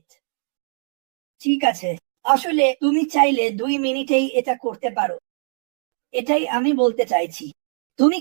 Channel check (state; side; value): silent; left; digital silence